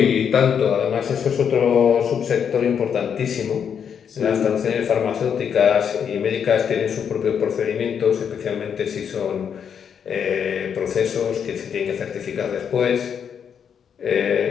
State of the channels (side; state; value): right; quieter; 7.6 dB